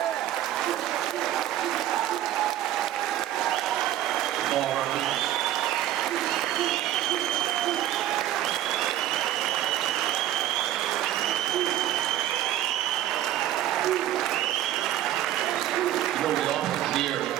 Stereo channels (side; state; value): left; quieter; 12.7 dB